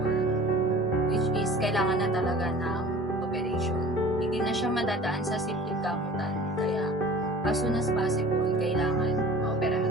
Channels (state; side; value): normal; both; correlation 0.43